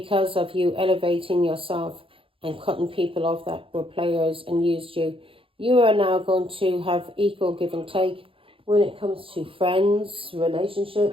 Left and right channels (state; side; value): late; left; 0.26 ms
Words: of you elevating yourself and cutting people off that were players and used you, you are now going to have equal give and take when it comes to friends,